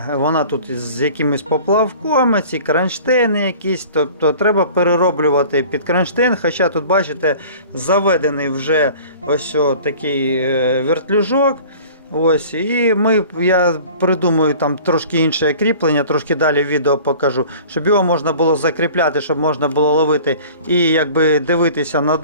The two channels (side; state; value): both; inverted; correlation -0.45